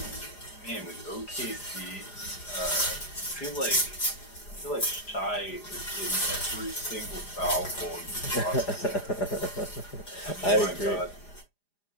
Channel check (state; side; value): late; right; 4.9 ms